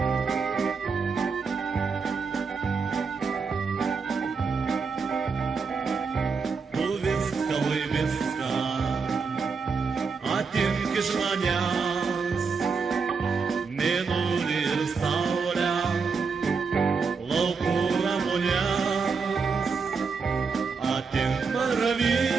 Увиска, вывиска, атинки жманяс, минули рсауля, лаукура муняс, атин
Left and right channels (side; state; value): left; quieter; 5.1 dB